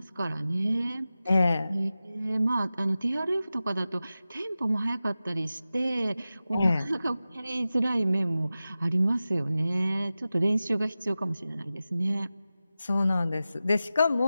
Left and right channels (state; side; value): inverted; both; correlation -0.94